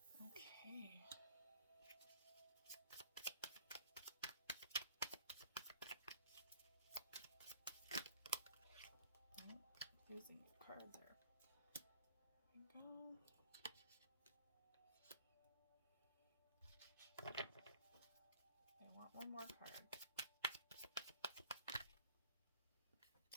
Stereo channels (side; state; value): both; inverted; correlation -0.49